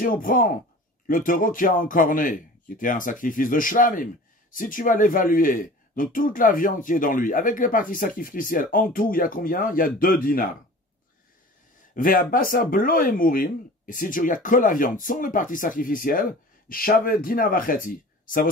on prend le taureau qui a encorné, qui était un sacrifice de shlamim, si tu vas l'évaluer, donc toute la viande qui est dans lui, avec les parties sacrificielles, en tout, il y a combien? Il y a 2 dinars. Ve'abasa blo emurim, et si tu regardes que la viande, sans les parties sacrificielles, shave dinar vacheti, ça vaut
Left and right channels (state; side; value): normal; both; correlation 0.41